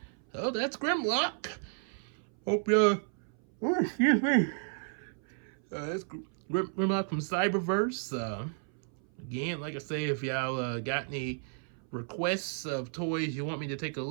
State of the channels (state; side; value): silent; left; 56 dB below the other